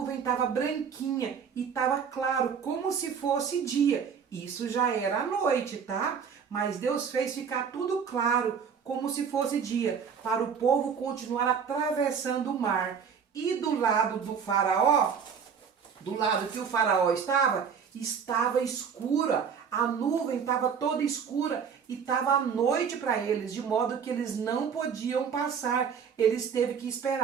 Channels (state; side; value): quieter; left; 6.8 dB